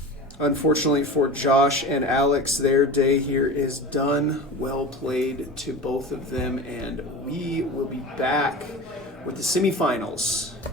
Unfortunately for Josh and Alex, their day here is done. Well played to both of them, and we will be back with the semifinals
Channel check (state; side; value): normal; both; correlation 0.32